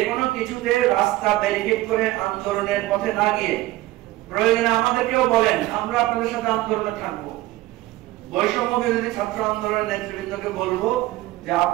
কোনো কিছুতে রাস্তা ব্যারিকেড করে আন্দোলনের পথে না গিয়ে প্রয়োজনে আমাদেরকেও বলেন, আমরা আপনাদের সাথে আন্দোলনে থাকবো। বৈষম্য বিরোধী ছাত্র আন্দোলনের নেতৃবৃন্দকে বলবো যে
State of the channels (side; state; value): left; quieter; 17.3 dB